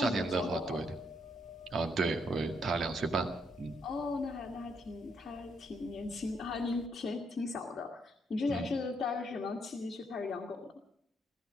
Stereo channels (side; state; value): both; normal; correlation 0.74